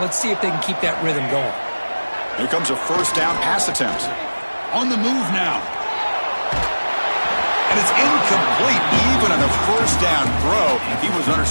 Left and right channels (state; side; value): inverted; both; correlation -1.00